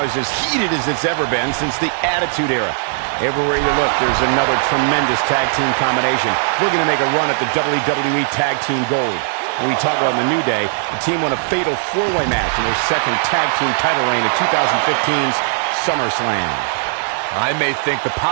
is as heated as it's ever been since the Attitude Era. Everywhere you look, there's another tremendous tag team combination looking to make a run at the WWE Tag Team Gold. When we talk about the New Day, the team won a fatal four-way match in their second tag team title reign at 2015's SummerSlam. I may think the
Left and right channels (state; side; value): silent; left; 66 dB below the other